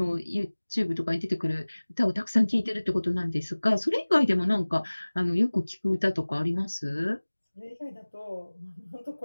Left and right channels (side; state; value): both; inverted; correlation -1.00